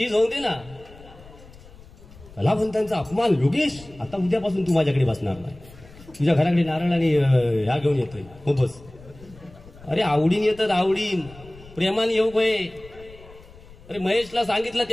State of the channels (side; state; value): left; noise; rumble, 21 dB below the sound